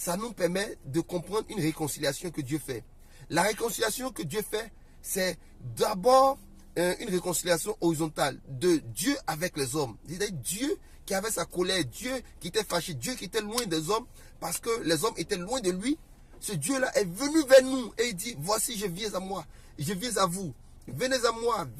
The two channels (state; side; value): identical; both; correlation 1.00